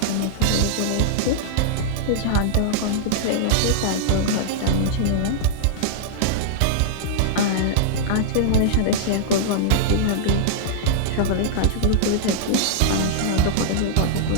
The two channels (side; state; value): both; different; correlation -0.02